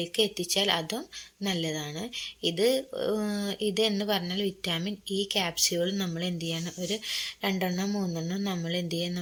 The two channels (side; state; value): both; identical; correlation 1.00